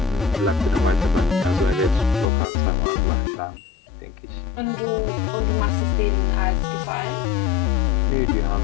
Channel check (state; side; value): drops out; right; at 2.2 s